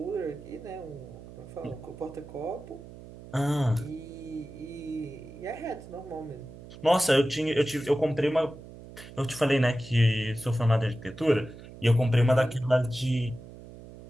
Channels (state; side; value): noise; right; hum, 16 dB below the sound